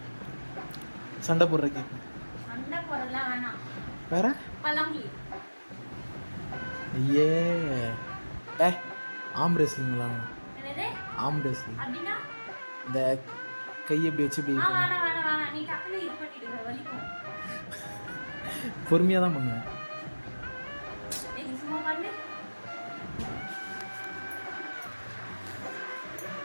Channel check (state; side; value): inverted; both; correlation -1.00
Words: சண்டை போடுற கேம். சண்டை போடலாம் வேணாம். வேற பழமொழி. ஐயே டே ஆம் ரெஸ்லிங் விளாட்லாம். என்னது ஆம் ரெஸ்லிங். அப்படின்னா இந்த கை எப்படி வச்சு இப்படி வேணாம் வேணாம் வேணாம். நீ டக்குனு இது பண்ணிடுங்க, வலிக்கும். பொறுமையாக தான் பண்ணுவேன். நீ சும்மா பண்ணு.